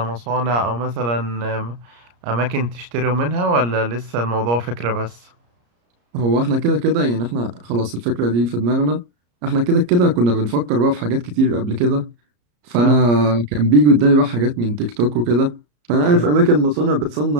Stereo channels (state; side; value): late; left; 34 ms